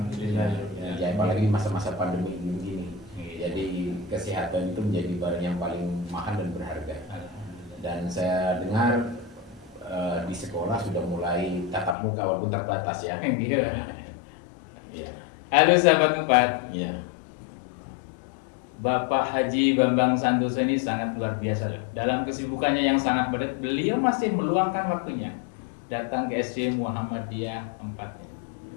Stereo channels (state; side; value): drops out; right; at 12.0 s